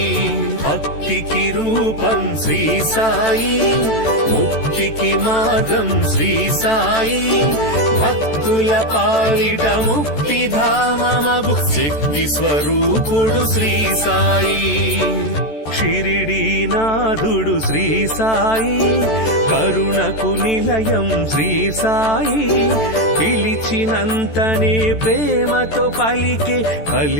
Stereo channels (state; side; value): late; right; 14 ms